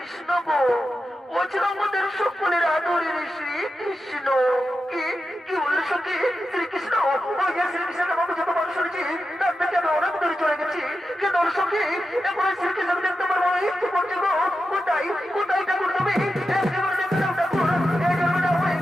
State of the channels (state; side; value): normal; both; correlation 0.90